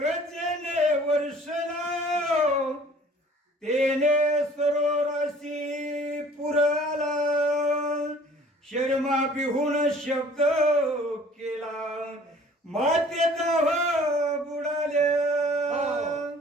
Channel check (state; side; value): normal; both; correlation 0.52